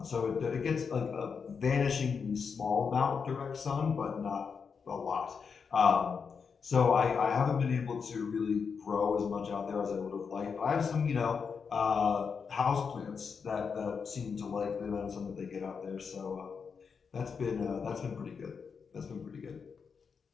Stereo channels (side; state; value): right; quieter; 5.9 dB